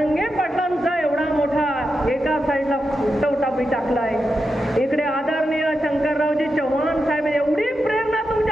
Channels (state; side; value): normal; both; correlation 0.88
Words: पाटलांचा एवढा मोठा एका साईडला फुटवटा टाकलाय, इकडे आदरणीय शंकररावजी चव्हाण साहेब, एवढी प्रेरणा